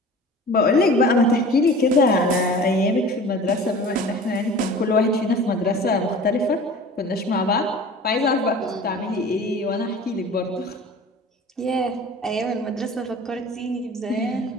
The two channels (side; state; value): both; normal; correlation 0.41